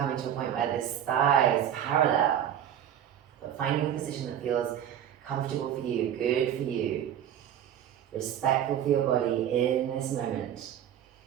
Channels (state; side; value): quieter; left; 10.1 dB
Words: to a point where this thigh is parallel. But finding a position that feels comfortable for you, good for you, respectful for your body in this moment.